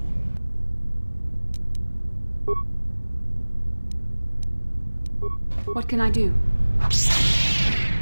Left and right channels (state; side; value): inverted; both; correlation -1.00